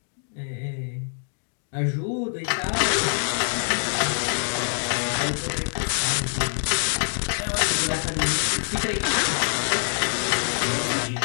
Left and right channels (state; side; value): silent; right; digital silence